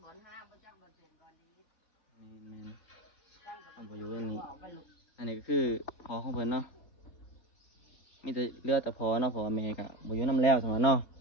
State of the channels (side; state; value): right; late; 4.2 ms